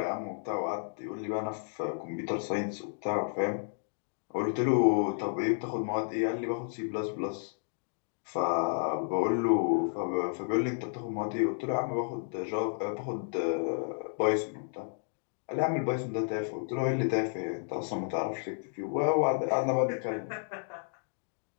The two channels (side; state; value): right; silent; digital silence